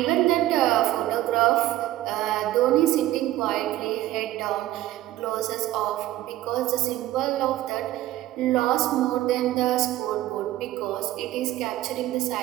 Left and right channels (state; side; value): quieter; left; 15.0 dB